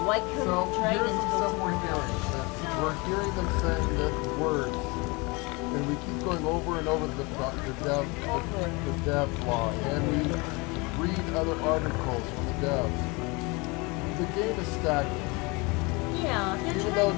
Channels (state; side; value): quieter; right; 27.0 dB